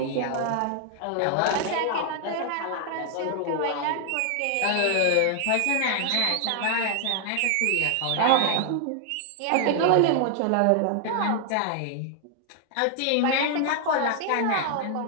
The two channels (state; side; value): different; both; correlation 0.00